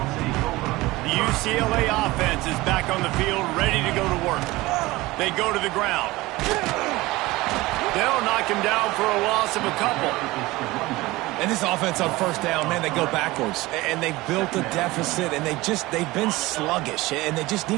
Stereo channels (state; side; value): quieter; left; 20.0 dB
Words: The UCLA offense is back on the field, ready to go to work. They go to the ground. They'll knock him down for a loss of a couple. And this offense on first down, man, they go backwards. And they built a deficit, and they've been sluggish. And they just